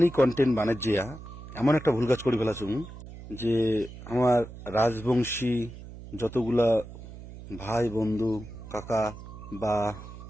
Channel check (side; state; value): right; noise; hum, 14 dB below the sound